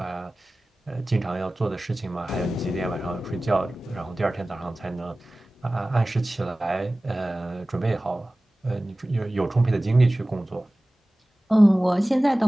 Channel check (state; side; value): normal; both; correlation 0.97